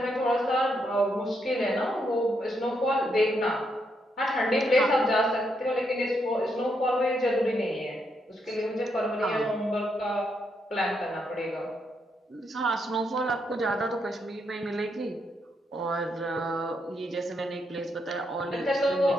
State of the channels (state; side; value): normal; both; correlation 0.78